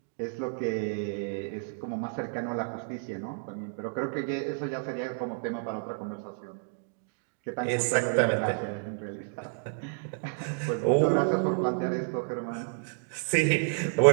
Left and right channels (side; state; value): left; silent; digital silence